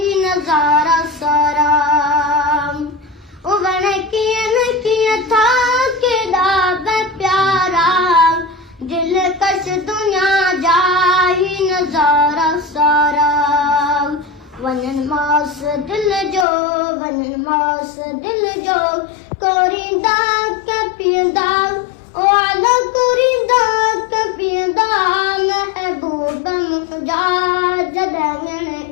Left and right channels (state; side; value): drops out; right; at 16.4 s